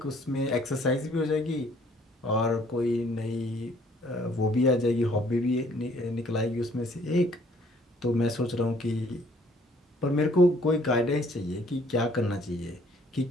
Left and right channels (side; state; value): both; normal; correlation 0.61